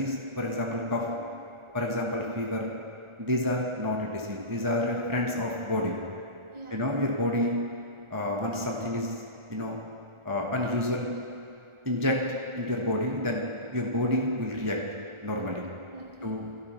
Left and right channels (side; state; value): left; late; 1.4 ms